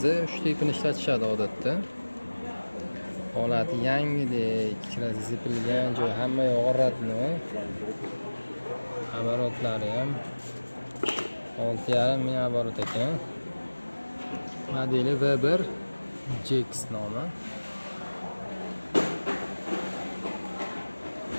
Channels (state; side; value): inverted; both; correlation -1.00